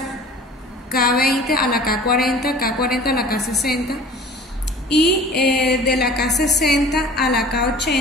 K20 a la K40, K40 a la K60. Y de la K60 a la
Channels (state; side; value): normal; both; correlation 0.44